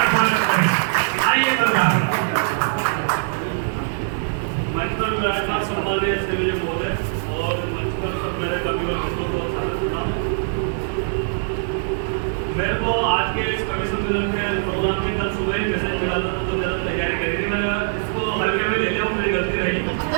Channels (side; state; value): left; silent; 64 dB below the other